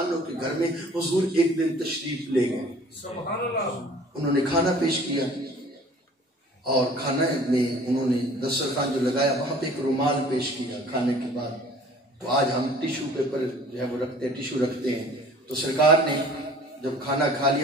عنہ کے گھر میں حضور ایک دن تشریف لے گئے، انہوں نے کھانا پیش کیا، اور کھانے میں انہوں نے دسترخوان جو لگایا وہاں پہ ایک رومال پیش کیا کھانے کے بعد۔ تو آج ہم ٹیشو پیپر جو ہے وہ رکھتے ہیں، ٹیشو رکھتے ہیں، تو سرکار نے جب کھانا کھا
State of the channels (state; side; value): normal; both; correlation 0.49